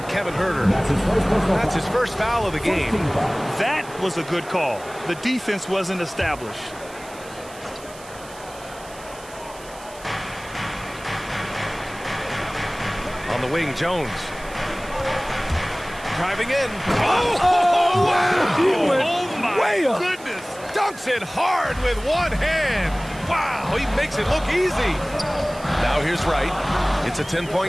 Kevin Huerter. That's his first foul of the game. That was a good call. The defense wasn't established. On the wing, Jones. Driving in. Oh, wow. He went way up. Goodness. Dunks it hard with one hand. Wow, he makes it look easy. Now here's Wright. It's a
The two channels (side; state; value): right; noise; hiss, 19 dB below the sound